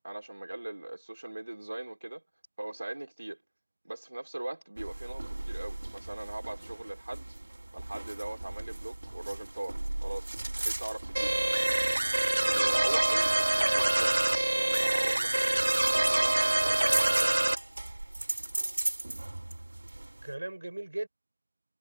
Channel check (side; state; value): both; inverted; correlation -1.00